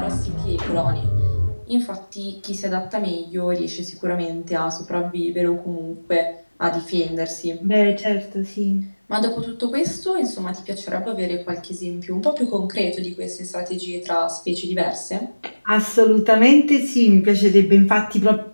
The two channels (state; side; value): inverted; both; correlation -1.00